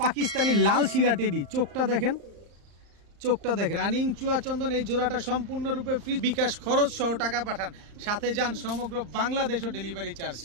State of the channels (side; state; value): left; late; 34 ms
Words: পাকিস্তানি লাল শিরা টেডি, চোখটা দেখেন রানিং চুয়াচন্দন। এই জোড়াটা সম্পূর্ণরূপে ফ্রি, বিকাশ খরচ সহ টাকা পাঠান, সাথে যান সমগ্র বাংলাদেশও ডেলিভারি চার্জ